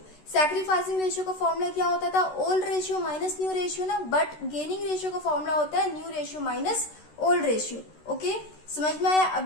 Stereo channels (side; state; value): right; late; 13 ms